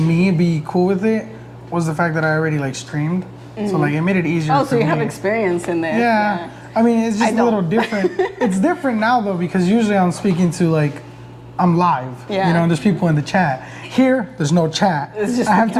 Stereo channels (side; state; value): both; identical; correlation 1.00